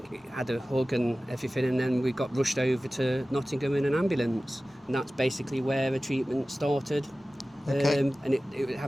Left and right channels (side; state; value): both; normal; correlation 0.96